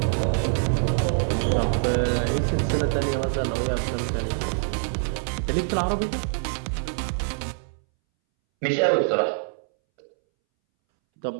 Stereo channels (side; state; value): left; silent; 62 dB below the other